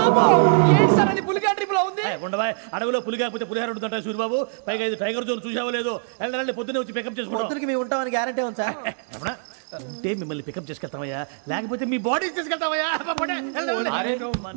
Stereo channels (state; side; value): silent; left; digital silence